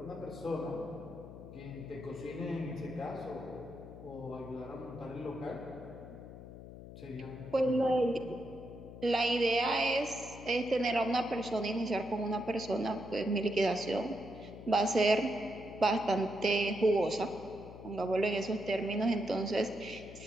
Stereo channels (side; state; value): left; noise; hum, 14 dB below the sound